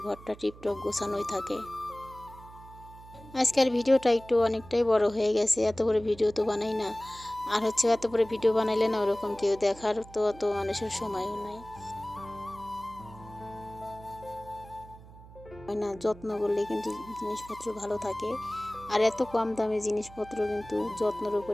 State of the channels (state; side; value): noise; right; hum, 19 dB below the sound